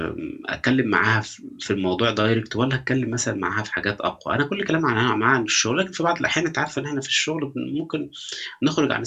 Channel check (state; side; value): identical; both; correlation 1.00